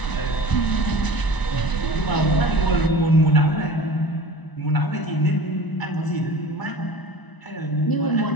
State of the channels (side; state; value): right; late; 1.0 ms